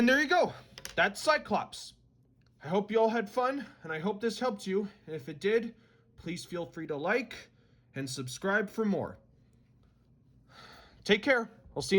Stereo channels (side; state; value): both; identical; correlation 1.00